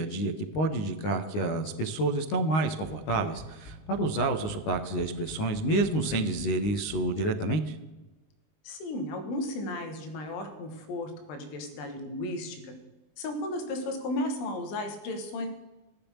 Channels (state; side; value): late; right; 20 ms